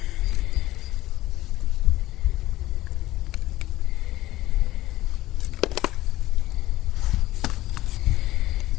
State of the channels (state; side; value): quieter; right; 16.1 dB